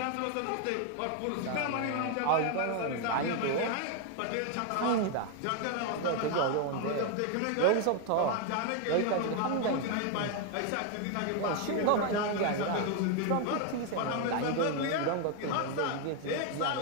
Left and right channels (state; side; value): different; both; correlation 0.01